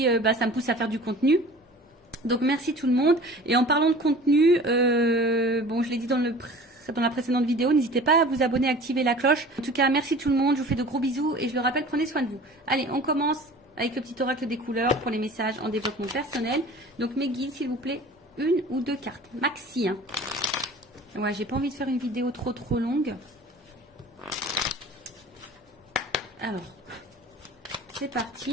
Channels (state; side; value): normal; both; correlation 0.43